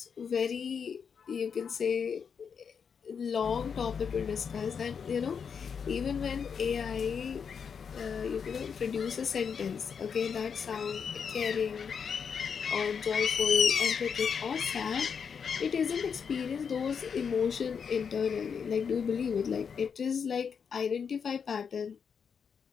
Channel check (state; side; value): quieter; right; 6.6 dB